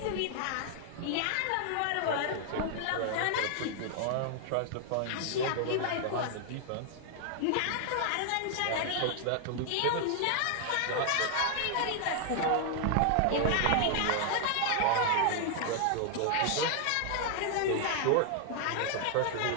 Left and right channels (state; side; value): different; both; correlation 0.00